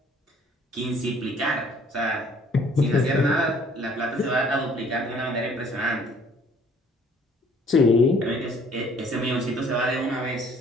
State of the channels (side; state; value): both; normal; correlation 0.58